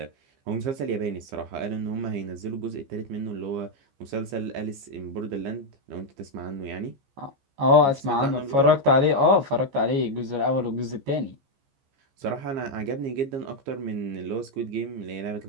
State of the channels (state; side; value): late; left; 15 ms